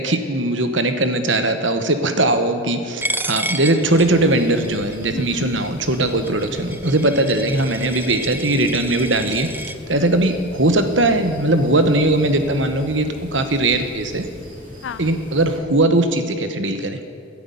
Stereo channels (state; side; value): normal; both; correlation 0.20